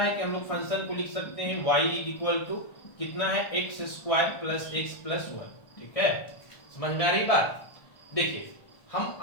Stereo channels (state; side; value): late; right; 1.4 ms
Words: है कि हम लोग फंक्शन को लिख सकते हैं y इक्वल टू कितना है, x square plus x plus 1, ठीक है। समझ में आ रही बात? देखिए हम,